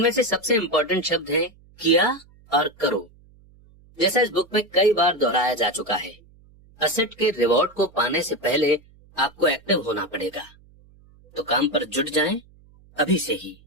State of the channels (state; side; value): noise; right; hum, 27 dB below the sound